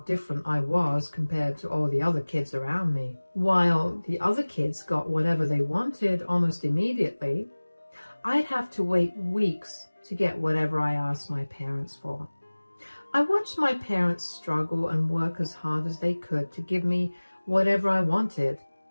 I was compared to all the other kids around me. While the other kids got whatever they wanted almost immediately, I'd have to wait weeks to get whatever I asked my parents for. I watched my parents struggle and work as hard as they could to give me whatever I wanted.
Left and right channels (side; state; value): both; inverted; correlation -1.00